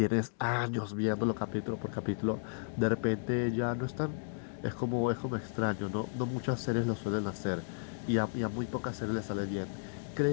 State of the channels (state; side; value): silent; right; digital silence